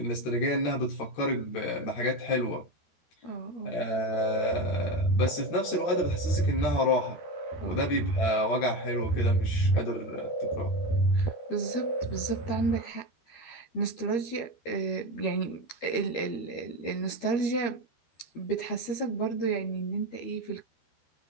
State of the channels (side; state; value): right; late; 13 ms